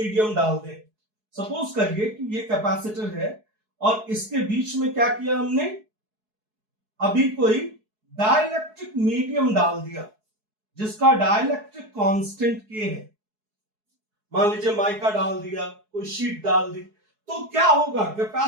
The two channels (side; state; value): left; late; 4.7 ms